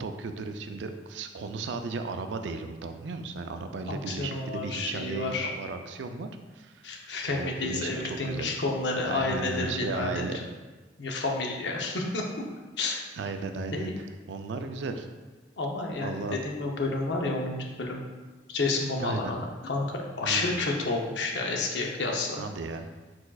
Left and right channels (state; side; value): normal; both; correlation 0.27